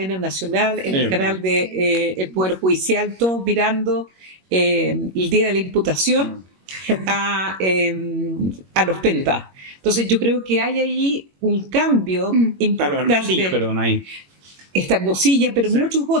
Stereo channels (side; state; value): left; late; 21 ms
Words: nacional, en el canal de el Poder Judicial, todos mirando el día de la imputación a los Penta. Entonces yo creo que hay ahí un cambio importante. Hermosilla, pero no hay. Está Hermosilla, pero muchos